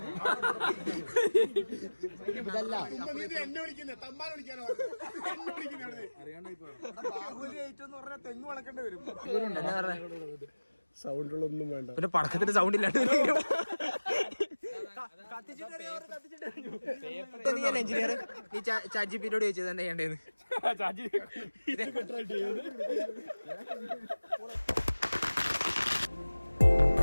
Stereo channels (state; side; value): inverted; both; correlation -1.00